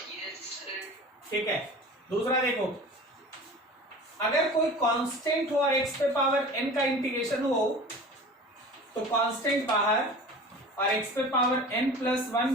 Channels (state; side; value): normal; both; correlation 0.38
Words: ठीक है। दूसरा देखो, अगर कोई कांस्टेंट हो और x पे पावर n का इंटीग्रेशन हो तो कांस्टेंट बाहर और x पे power n plus